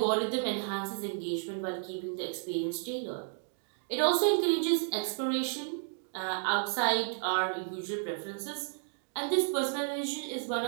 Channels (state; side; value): silent; left; 56 dB below the other